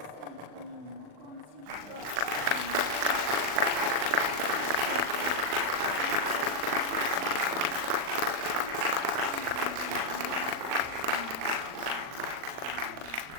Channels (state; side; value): late; left; 39 ms